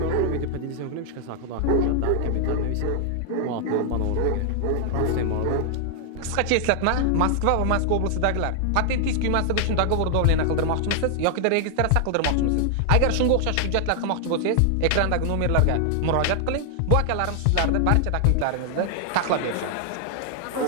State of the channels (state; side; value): different; both; correlation 0.00